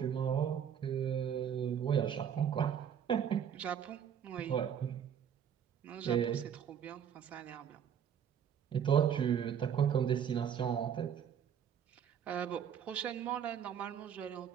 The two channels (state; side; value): quieter; left; 8.4 dB